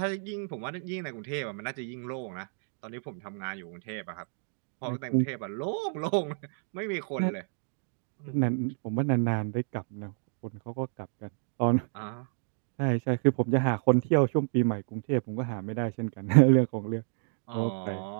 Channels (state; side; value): silent; left; 58 dB below the other